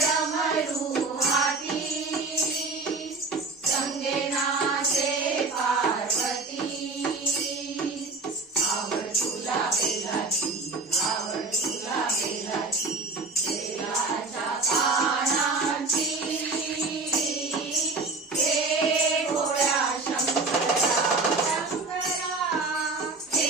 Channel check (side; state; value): left; quieter; 3.6 dB